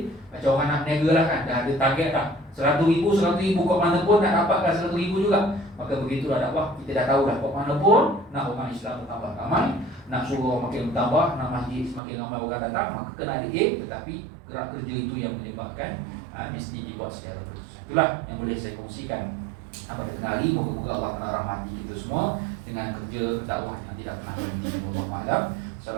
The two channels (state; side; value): drops out; left; at 12.0 s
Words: Macam orang nak berniaga lah kan, dah ada target dah, 100,000 kat mana pun nak dapatkan 100,000 juga. Maka begitulah dakwah. Kita dah tahu dah, kat mana pun nak orang Islam bertambah ramai, nak suruh orang makin bertambah, nak masjid semakin ramai orang datang, maka kena ada aim. Tetapi gerak kerja itu yang menyebabkan mesti dibuat secara terus. Itulah yang boleh saya kongsikan pada tengah hari. Moga-moga Allah Ta'ala rahmati kita semua dengan kerja dakwah yang tidak pernah berhenti. Wallahu a'lam.